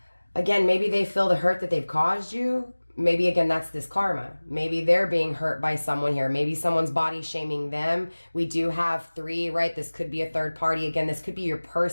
maybe they feel the hurt that they've caused you. Maybe, again, that's this karma. Maybe they're being hurt by someone here. Maybe someone's body shaming them. We do have 3, right? This could be a third party. Again, this could be your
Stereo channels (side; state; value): both; inverted; correlation -1.00